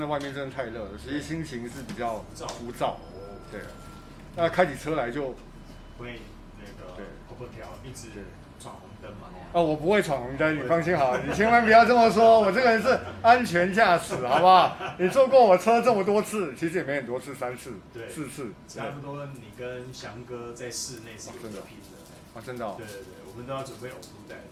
外面真的太热了，所以心情是比较浮躁。对，那开起车来就会跑不掉，一直闯红灯嘛。我不会闯红灯，你放心好，你千万不要这么说，我这个人是安全驾驶，好不好？你坐过我车这么多次，其实也没很多次，3次、4次，差不多。你跟翔哥在室内是真的拼的，真的。对，我们都要准备呕吐袋。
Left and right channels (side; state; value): both; identical; correlation 1.00